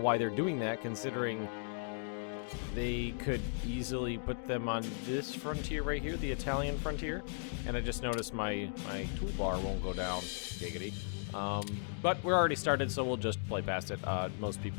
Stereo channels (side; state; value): right; silent; digital silence